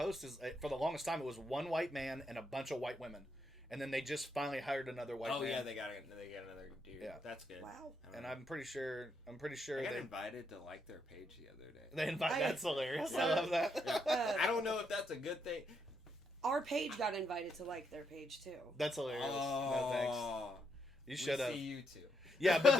is for the longest time it was one white man and a bunch of white women, and then they just finally hired another white man. oh yeah, they got another dude. Yeah. That's good. Wow. And I'm pretty sure I got they invited to like their page the other day. That's hilarious. I love that. I don't know if that's a good thing. Our page got invited to like their page too. That's hilarious. No thanks. You should have. See you too. Yeah, but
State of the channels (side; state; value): both; normal; correlation 0.78